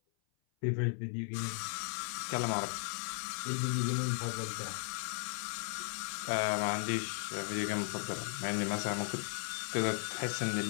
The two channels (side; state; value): right; silent; 54 dB below the other